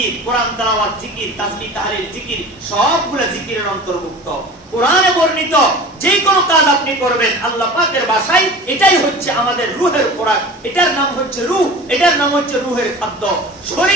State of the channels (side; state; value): both; normal; correlation 0.38